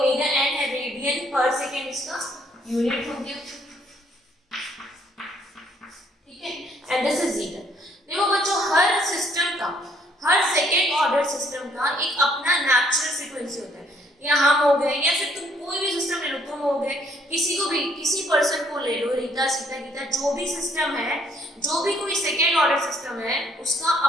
एन है, रेडियन पर सेकेंड इसका यूनिट हो गया, ठीक है। And this is zeta. देखो बच्चों, हर सिस्टम का, हर सेकेंड ऑर्डर सिस्टम का एक अपना नेचुरल फ्रीक्वेंसी होता है। या हम हो गए, या फिर तुम कोई भी सिस्टम ले लो, तुम हो गए, किसी को भी, किसी पर्सन को ले लो, रीता, सीता, गीता, जो भी सिस्टम है, जो भी कोई सेकेंड ऑर्डर सिस्टम है, उसका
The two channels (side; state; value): both; normal; correlation 0.66